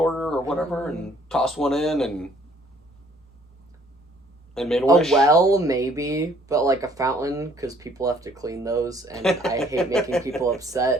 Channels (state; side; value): normal; both; correlation 0.60